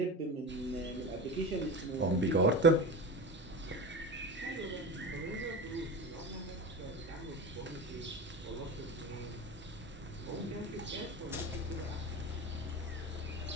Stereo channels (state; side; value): normal; both; correlation 0.29